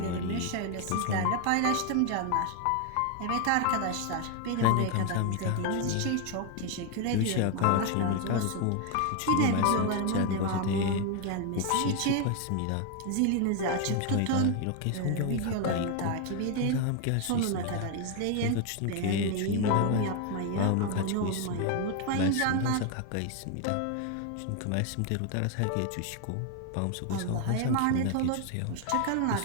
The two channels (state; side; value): different; both; correlation 0.01